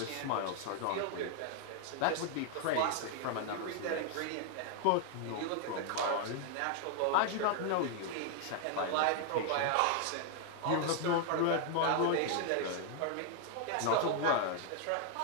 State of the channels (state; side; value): different; both; correlation 0.00